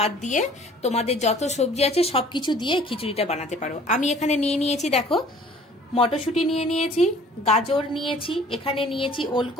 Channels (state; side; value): normal; both; correlation 0.52